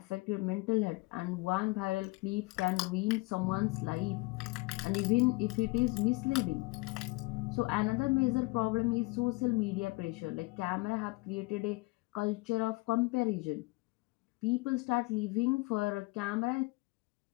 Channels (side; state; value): right; quieter; 24.5 dB